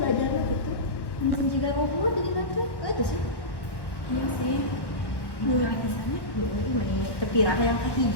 belajarnya gitu. Mungkin juga ngobrol jadi nanti. Itu sih. Iya sih. Mulai di sana, mulai terpirah yang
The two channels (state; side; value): late; right; 1.1 ms